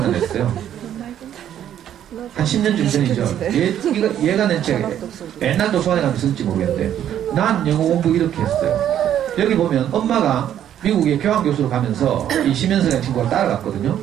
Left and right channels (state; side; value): quieter; left; 10.5 dB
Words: 냈어요. 한 10년쯤 전이죠. 얘가 낸 책, 옛날 도서관에 가면 쓸지 모르겠는데 난 영어 공부 이렇게 했어요. 여기 보면 엄마가 미국에 교환교수로 가면서 이 심현석이라는 친구가 따라갔거든요.